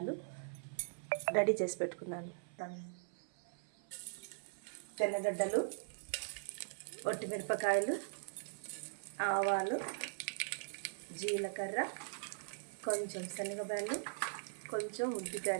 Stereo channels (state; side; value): silent; left; 51 dB below the other